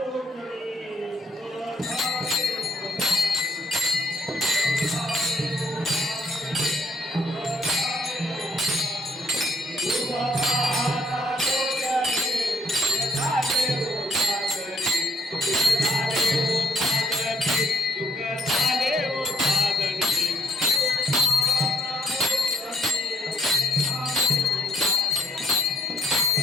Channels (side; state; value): both; normal; correlation 0.65